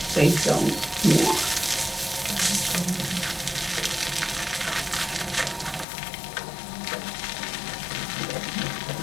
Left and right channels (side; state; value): right; drops out; at 5.9 s